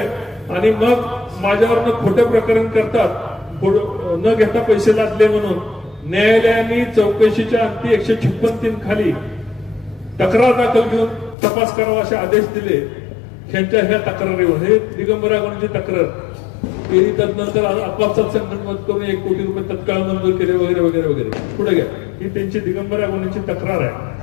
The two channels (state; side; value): drops out; right; at 11.4 s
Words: आणि मग माझ्यावरनं खोटं प्रकरण करतात. न घेता पैसे लादले म्हणून न्यायालयाने चौकशीच्या अंती 156(3) खाली तक्रार दाखल घेऊन तपास करावा असे आदेश दिले. ह्यांच्या ह्या तक्रारीवर हे दिगंबर अगवणेंची तक्रार केली. तदनंतर आपापसात संगनमत करून 1 कोटी रुपये तत्काळ मंजूर केले वगैरे वगैरे वगैरे. पुढे घ्या. ही त्यांची दिगंबर अगवणेंची तक्रार आहे.